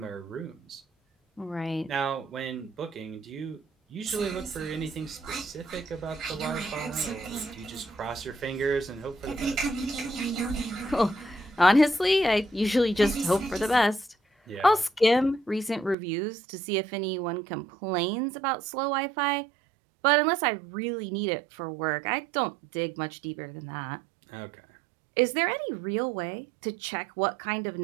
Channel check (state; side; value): drops out; left; at 16.0 s